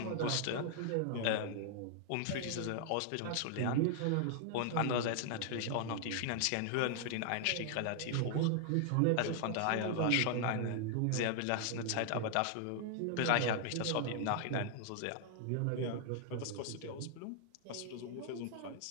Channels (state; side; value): different; both; correlation 0.00